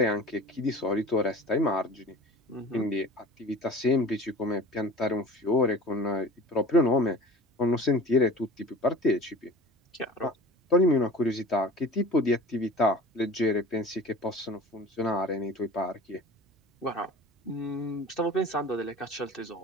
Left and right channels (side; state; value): both; normal; correlation 0.41